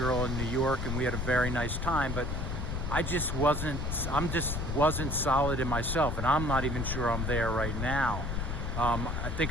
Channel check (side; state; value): left; noise; rumble, 2 dB below the sound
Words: in New York and we had a very nice time, but I just wasn't solid in myself, and I'm not even sure I'm there right now. I